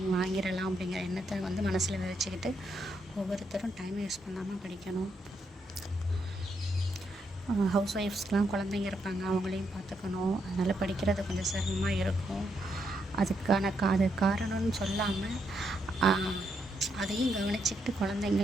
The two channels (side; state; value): both; normal; correlation 0.79